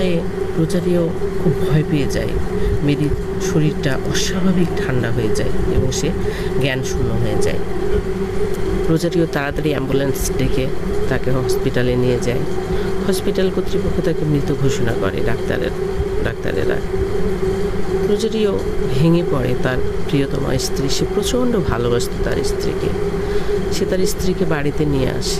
রোজারিও খুব ভয় পেয়ে যায়। মেরির শরীরটা অস্বাভাবিক ঠান্ডা হয়ে যায় এবং সে জ্ঞান শূন্য হয়ে যায়। রোজারিও তাড়াতাড়ি অ্যাম্বুলেন্স ডেকে তাকে হসপিটালে নিয়ে যায়। হসপিটাল কর্তৃপক্ষ তাকে মৃত ঘোষণা করে, ডাক্তারেরা। রোজারিও ভেঙে পড়ে। তার প্রিয়তমা স্ত্রী, সে প্রচণ্ড ভালোবাসত তার স্ত্রীকে। সে তার স্ত্রীকে বাড়িতে নিয়ে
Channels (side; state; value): both; identical; correlation 1.00